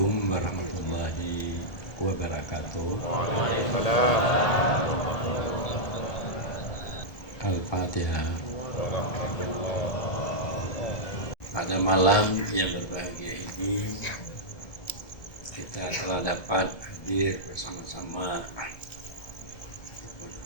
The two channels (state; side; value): late; right; 1.7 ms